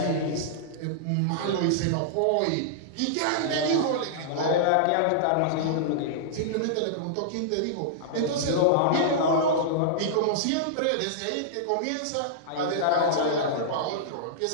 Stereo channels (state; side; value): different; both; correlation -0.02